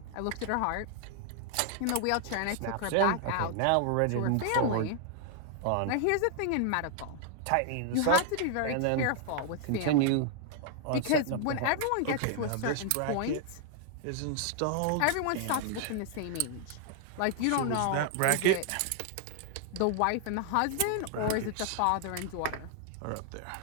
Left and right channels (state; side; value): different; both; correlation 0.00